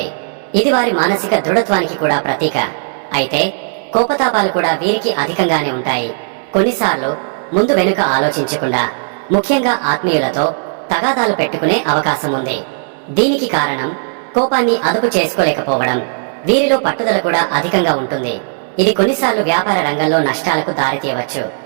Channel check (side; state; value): left; silent; digital silence